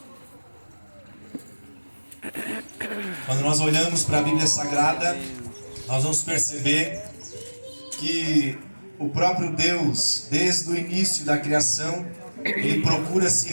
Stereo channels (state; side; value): inverted; both; correlation -1.00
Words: Quando nós olhamos para a Bíblia Sagrada, nós vamos perceber que o próprio Deus, desde o início da criação, Ele procura se